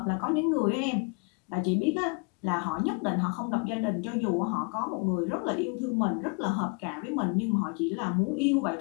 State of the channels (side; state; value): right; quieter; 35.4 dB